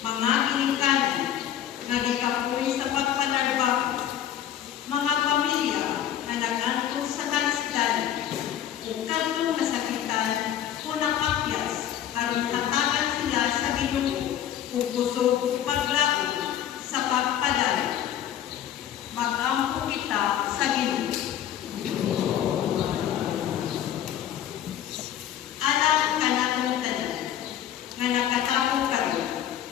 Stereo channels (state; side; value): quieter; right; 10.6 dB